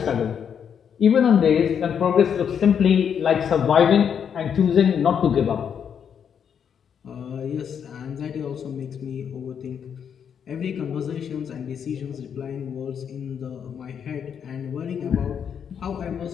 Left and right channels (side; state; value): right; quieter; 7.8 dB